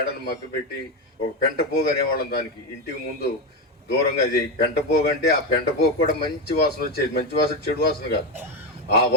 మగ్గపెట్టి ఒక పెంటపోగు అనేవాళ్ళం దానికి. ఇంటికి ముందు దూరంగా అది పెంటపోగు అంటే ఆ పెంటపోగు కూడా మంచి వాసన వచ్చేది. మంచి వాసన చెడు వాసన కాదు, ఆ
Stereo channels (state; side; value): normal; both; correlation 0.12